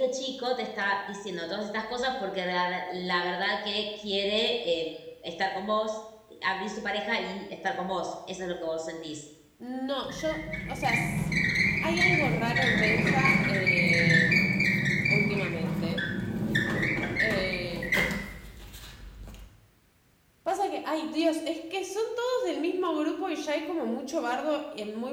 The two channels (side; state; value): both; identical; correlation 1.00